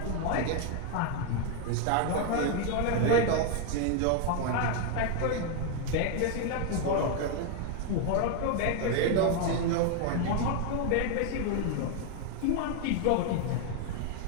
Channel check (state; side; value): different; both; correlation 0.01